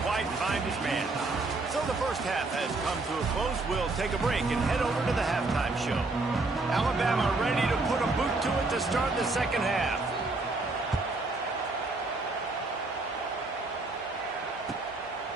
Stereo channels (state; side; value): quieter; left; 3.3 dB